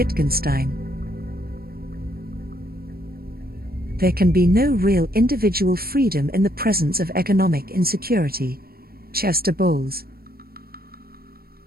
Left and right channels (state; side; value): late; left; 0.44 ms